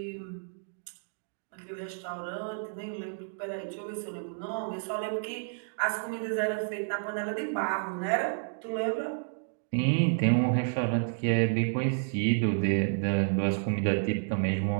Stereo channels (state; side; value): silent; left; digital silence